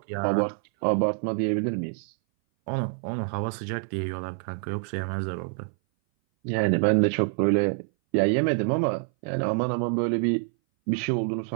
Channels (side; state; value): left; silent; 59 dB below the other